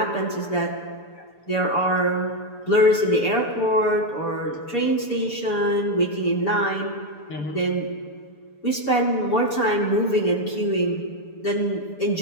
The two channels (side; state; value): right; late; 6.9 ms